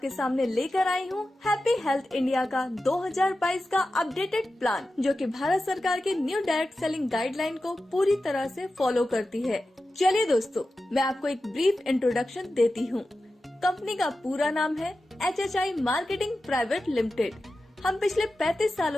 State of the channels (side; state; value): both; normal; correlation 0.93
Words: सामने लेकर आई हूँ हैप्पी हेल्थ इंडिया का 2022 का अपडेटेड प्लान, जो कि भारत सरकार के न्यू डायरेक्ट सेलिंग गाइडलाइन को पूरी तरह से फॉलो करती है। चलिए दोस्तों, मैं आपको एक ब्रीफ इंट्रोडक्शन देती हूँ। कंपनी का पूरा नाम है HHI मार्केटिंग प्राइवेट लिमिटेड। हम पिछले 35